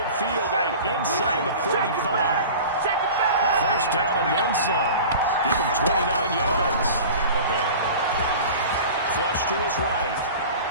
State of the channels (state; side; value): inverted; both; correlation -0.38